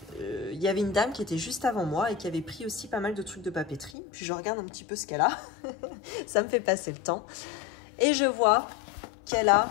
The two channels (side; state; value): right; drops out; at 4.0 s